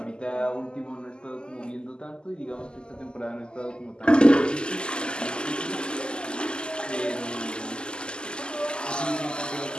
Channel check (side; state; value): right; late; 0.048 ms